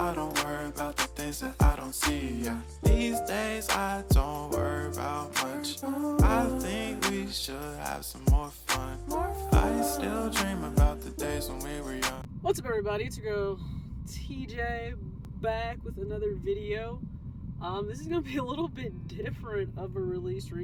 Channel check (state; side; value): identical; both; correlation 1.00